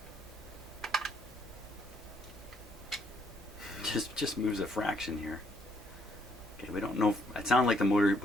Just moves a fraction here. Okay, we don't know. It sounded like the motor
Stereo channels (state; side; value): normal; both; correlation 0.71